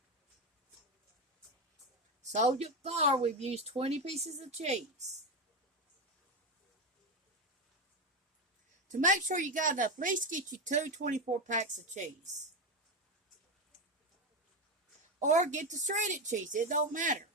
So far, we've used 20 pieces of cheese. To make sure you got enough, at least get you 2 24 packs of cheese. Or get the shredded cheese. It don't matter.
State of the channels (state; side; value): normal; both; correlation 0.13